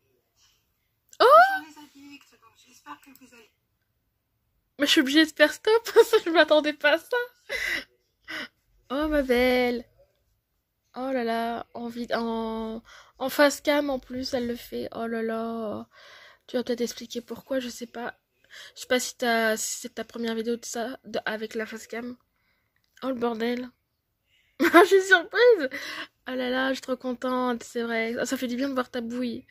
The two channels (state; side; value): identical; both; correlation 1.00